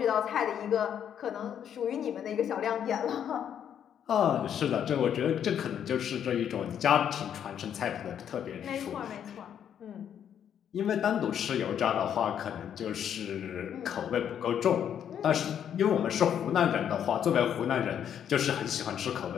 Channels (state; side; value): quieter; right; 9.1 dB